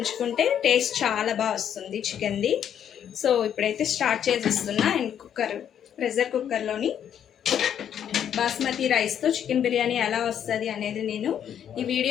టేస్ట్ చాలా బాగా వస్తుంది చికెన్ది. సో ఇప్పుడైతే స్టార్ట్ చేసేస్తున్నా. అండ్ ప్రెషర్ కుక్కర్లోని బాస్మతి రైస్తో చికెన్ బిర్యానీ ఎలా వస్తుంది అనేది నేను ఈ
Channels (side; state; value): right; quieter; 9.3 dB